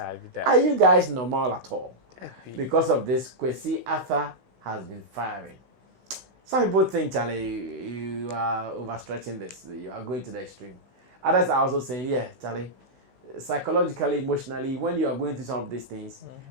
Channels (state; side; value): late; left; 16 ms